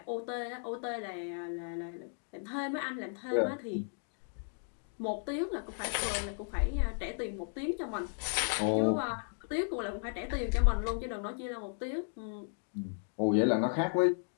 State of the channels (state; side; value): silent; right; 55 dB below the other